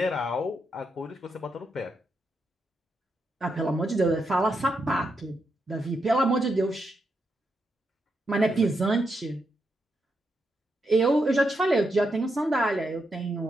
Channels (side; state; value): both; normal; correlation 0.83